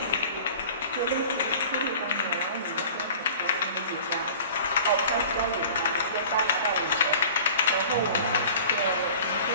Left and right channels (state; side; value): inverted; both; correlation -0.43